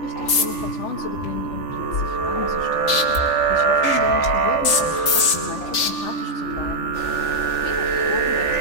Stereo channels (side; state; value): right; late; 3.4 ms